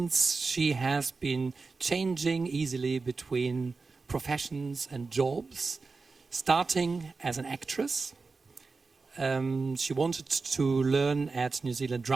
she has been changing easily between professions and jobs, starting as an actress. She wanted to learn at New Zealand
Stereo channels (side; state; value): left; quieter; 4.2 dB